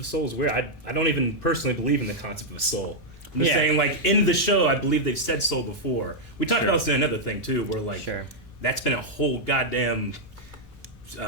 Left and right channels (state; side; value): normal; both; correlation -0.03